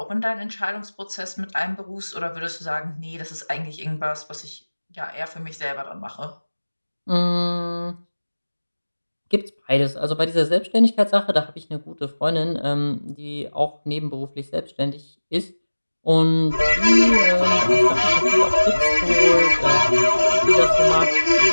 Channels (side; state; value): both; inverted; correlation -1.00